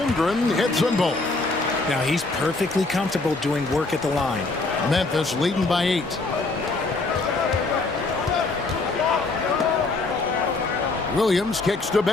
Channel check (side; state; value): right; quieter; 3.4 dB